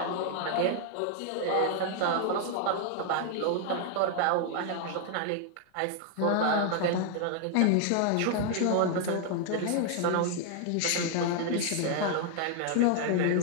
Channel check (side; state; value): both; different; correlation 0.00